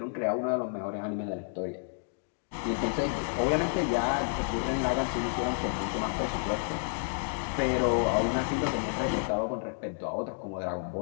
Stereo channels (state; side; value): silent; right; digital silence